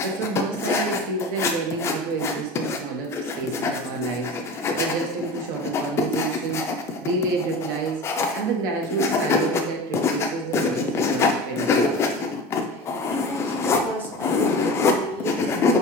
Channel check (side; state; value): both; normal; correlation 0.33